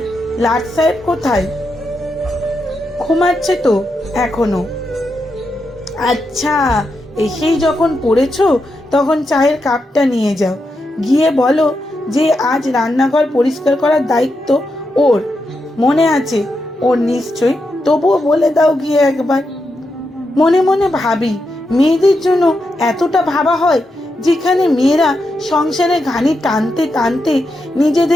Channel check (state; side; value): normal; both; correlation 0.85